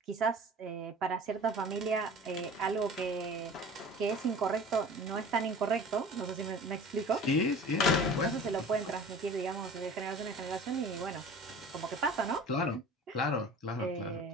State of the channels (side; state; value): both; normal; correlation 0.41